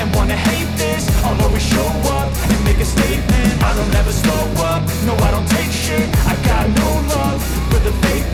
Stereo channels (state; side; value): identical; both; correlation 1.00